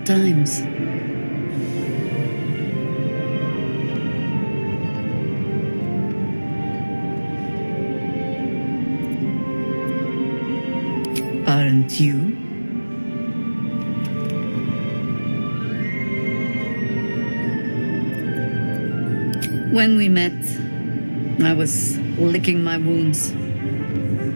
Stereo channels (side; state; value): both; inverted; correlation -1.00